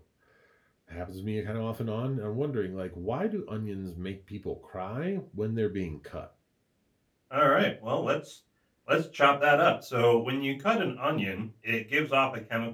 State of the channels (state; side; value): identical; both; correlation 1.00